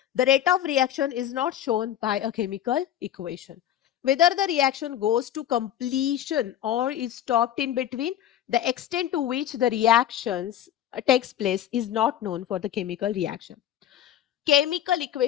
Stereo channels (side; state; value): right; quieter; 11.2 dB